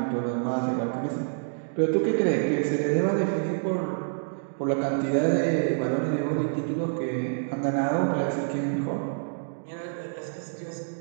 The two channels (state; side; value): silent; left; digital silence